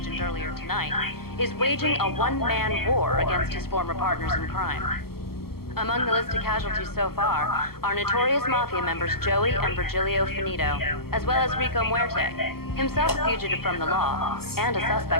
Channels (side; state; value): right; late; 0.94 ms